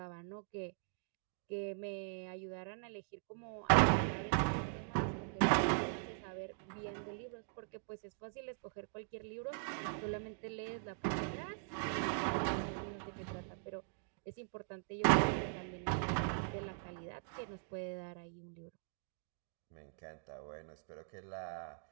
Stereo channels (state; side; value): silent; left; digital silence